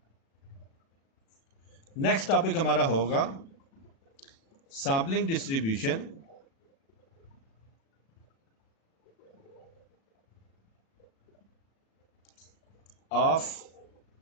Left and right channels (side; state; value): right; late; 36 ms